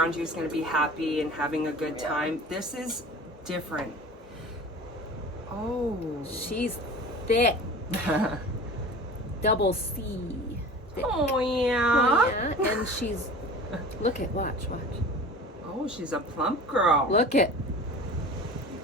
you is going to be happy and having a good time. This is different. Oh. She's thick. Double C. Thick. Oh, yeah. Yeah, and she's watch. Oh, she's a plump girl. Look at.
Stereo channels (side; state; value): both; normal; correlation 0.39